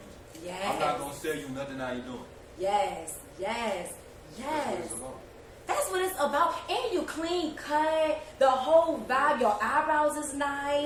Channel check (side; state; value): both; identical; correlation 1.00